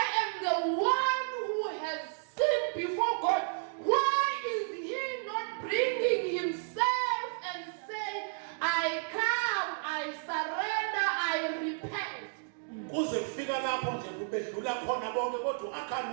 am the one who has sinned before God. Why is he not bringing himself and say, I come, I surrender, I repent? Kuze kufika lapho nje kubedlula khona bonke kodwa uAkhan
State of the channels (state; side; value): silent; left; digital silence